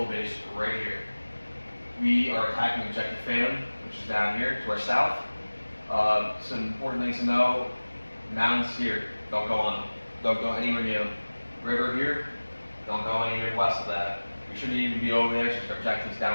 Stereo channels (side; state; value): both; inverted; correlation -1.00